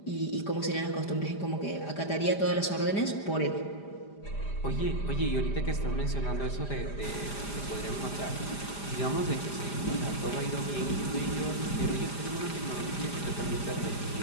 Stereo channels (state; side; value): late; right; 5.0 ms